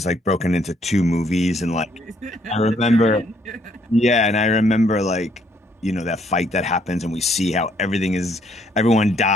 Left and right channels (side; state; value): both; normal; correlation 0.68